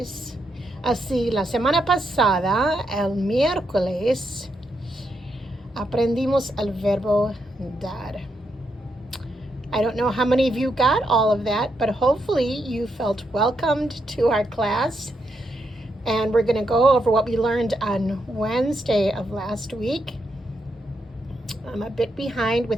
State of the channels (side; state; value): both; normal; correlation 0.81